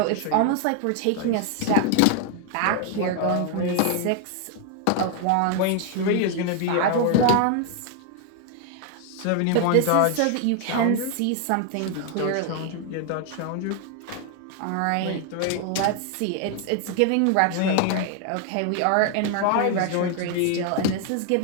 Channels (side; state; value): both; different; correlation 0.00